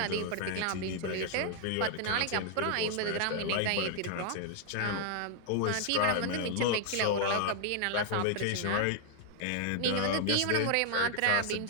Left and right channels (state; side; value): different; both; correlation 0.00